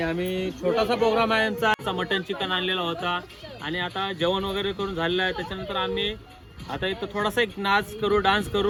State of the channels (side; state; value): both; identical; correlation 1.00